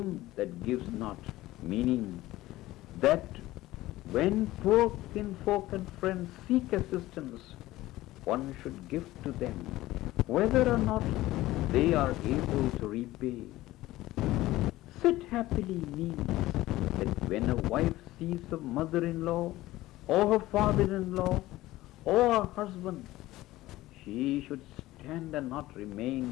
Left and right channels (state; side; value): quieter; right; 16.9 dB